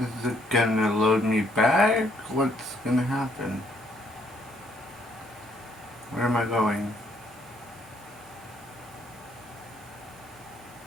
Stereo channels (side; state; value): both; normal; correlation 0.68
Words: Is it gonna load me back? What's gonna happen? Where am I going?